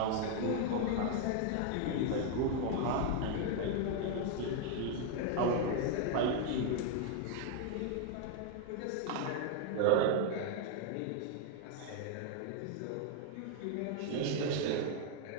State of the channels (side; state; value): both; different; correlation 0.00